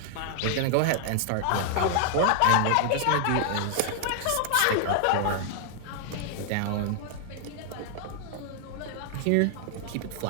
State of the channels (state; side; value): different; both; correlation 0.00